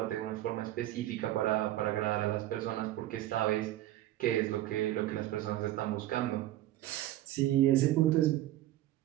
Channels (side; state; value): left; quieter; 14.6 dB